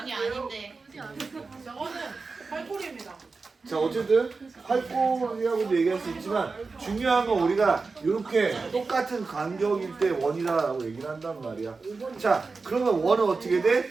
아닌데. 저거는 팔골입니다. 자 어쨌든 활골이라고도 얘기할 수 있지만 중요한 건 우리가 이렇게 똑같은 간격일 때 원이다라고 얘기를 한단 말이야. 자 그러면 원은 어떻게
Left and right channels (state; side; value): quieter; left; 4.2 dB